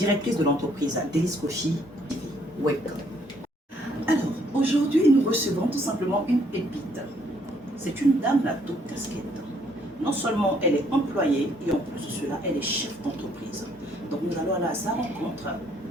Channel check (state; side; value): normal; both; correlation 0.67